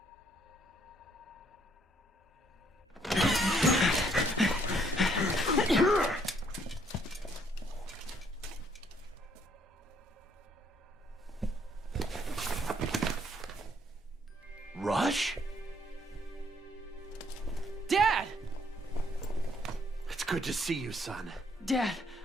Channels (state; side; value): normal; both; correlation 0.67